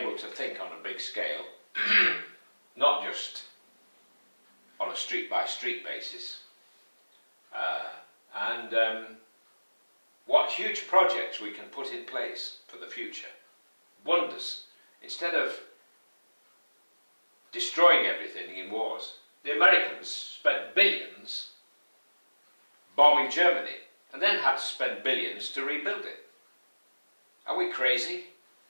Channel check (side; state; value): both; inverted; correlation -1.00